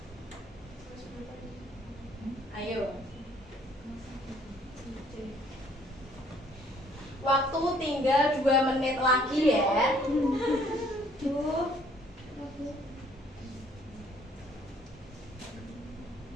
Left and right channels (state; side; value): normal; both; correlation 0.61